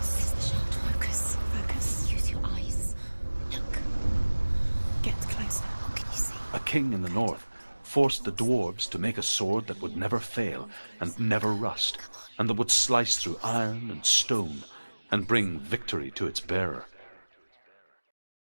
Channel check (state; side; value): inverted; both; correlation -1.00